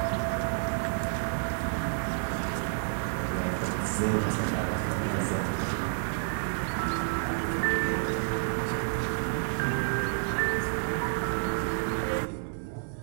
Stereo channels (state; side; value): silent; left; 58 dB below the other